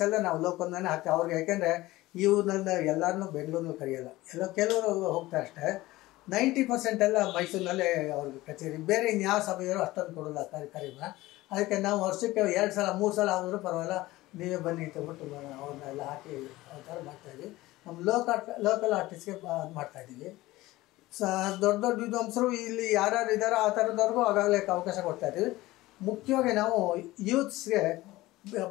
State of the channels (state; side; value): quieter; right; 18.3 dB